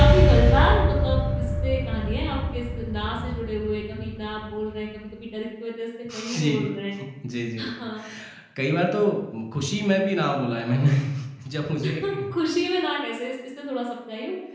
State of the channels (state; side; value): identical; both; correlation 1.00